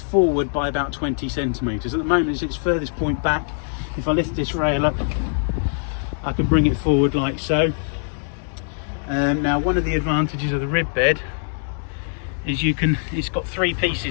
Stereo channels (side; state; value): right; silent; digital silence